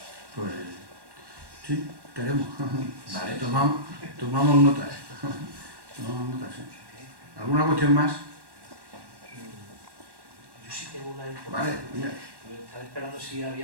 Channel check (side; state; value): left; late; 1.1 ms